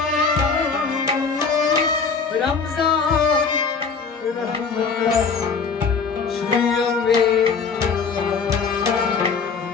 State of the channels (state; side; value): quieter; right; 5.3 dB